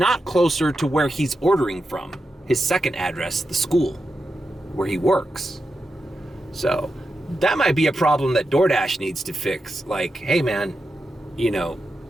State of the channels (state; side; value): normal; both; correlation 0.88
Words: closer to where he's ordering from, his second address, the school where he works. So that might be a problem that DoorDash needs to fix. Like, hey man, you know,